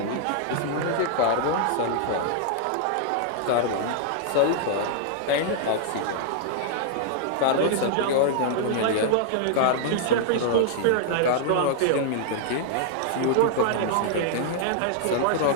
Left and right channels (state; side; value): different; both; correlation -0.01